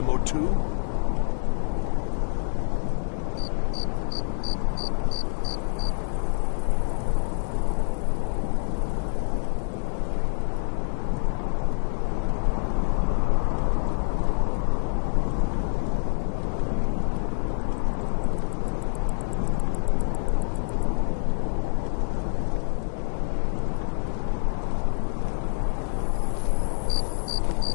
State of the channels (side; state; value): right; silent; 61 dB below the other